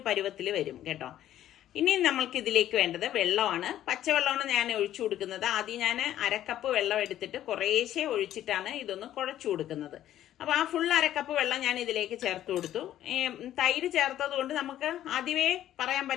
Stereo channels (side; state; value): right; quieter; 12.3 dB